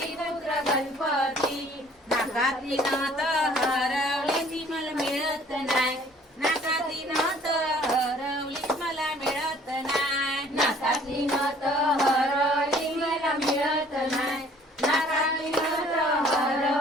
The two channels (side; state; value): both; normal; correlation 0.56